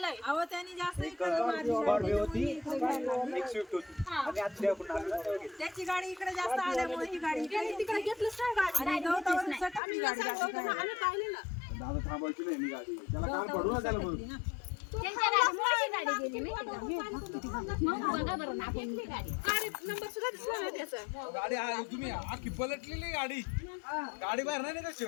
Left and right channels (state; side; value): drops out; right; at 9.8 s